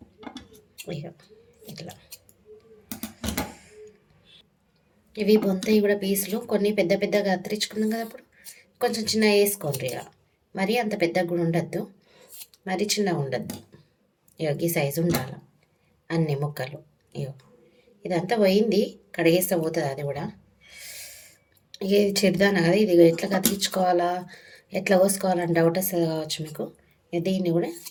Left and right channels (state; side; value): identical; both; correlation 1.00